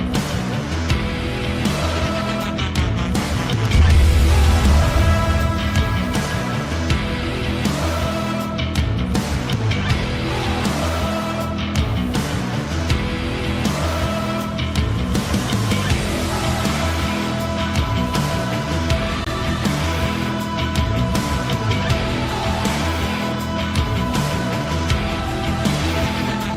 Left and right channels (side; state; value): both; identical; correlation 1.00